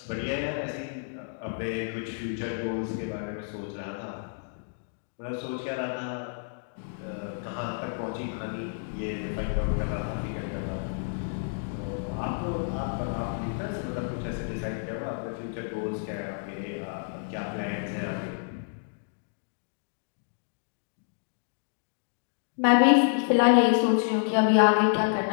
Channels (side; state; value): right; silent; digital silence